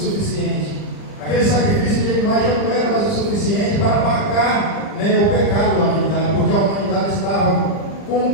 Aquele sacrifício de animais já não era mais o suficiente para apagar, né, o pecado da humanidade, porque a humanidade estava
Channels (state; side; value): late; right; 40 ms